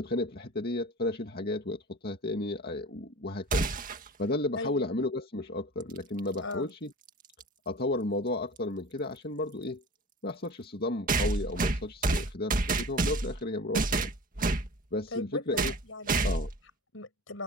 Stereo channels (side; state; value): both; normal; correlation 0.37